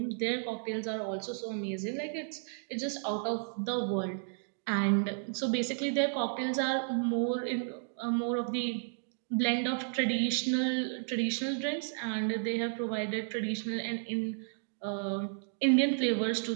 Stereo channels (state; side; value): silent; left; digital silence